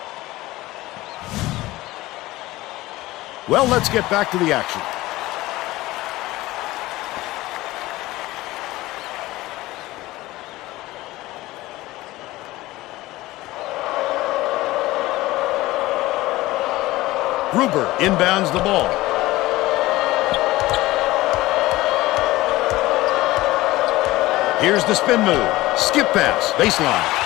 Well, let's get back to the action. Gruber inbounds the ball. Here's the spin move. Skip pass. Baseline.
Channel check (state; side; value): quieter; right; 18.2 dB